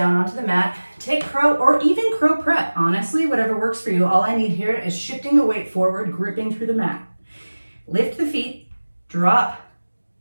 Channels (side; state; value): both; inverted; correlation -1.00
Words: onto the mat. Take crow or even crow prep. Honestly, whatever works for you. All I need here is shifting the weight forward, gripping through the mat. Lift the feet, drop,